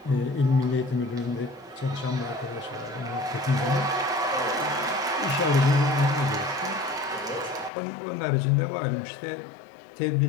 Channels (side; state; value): right; drops out; at 7.7 s